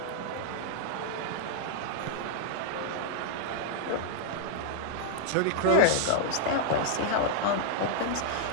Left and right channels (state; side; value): different; both; correlation 0.00